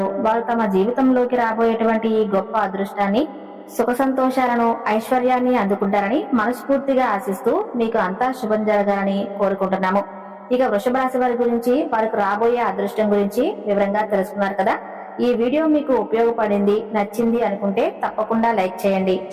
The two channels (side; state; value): both; identical; correlation 1.00